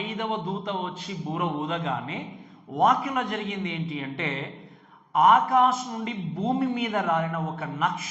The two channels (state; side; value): identical; both; correlation 1.00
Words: దూత వచ్చి బూర ఊదగానే వాక్యంలో జరిగింది ఏంటి అంటే, ఆకాశం నుండి భూమి మీద రాలిన ఒక